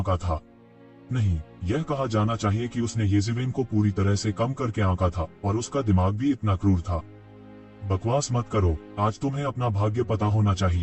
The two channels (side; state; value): both; identical; correlation 1.00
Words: था। नहीं, यह कहा जाना चाहिए कि उसने येज़िवेन को पूरी तरह से कम करके आंका था, और उसका दिमाग भी इतना क्रूर था। बकवास मत करो, आज तुम्हें अपना भाग्य पता होना